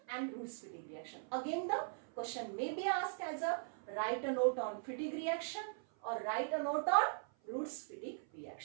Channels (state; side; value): silent; left; 51 dB below the other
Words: and Roots-Fittig reaction. Again the question may be asked as a write a note on Fittig reaction or write a note on Roots-Fittig